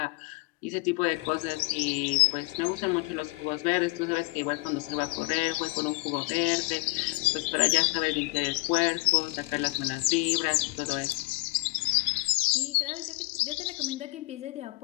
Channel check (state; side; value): quieter; right; 23.4 dB